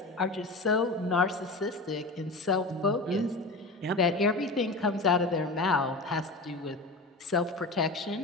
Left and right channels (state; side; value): quieter; right; 3.0 dB